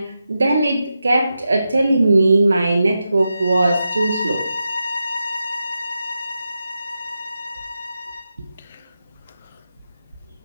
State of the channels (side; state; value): both; inverted; correlation -0.89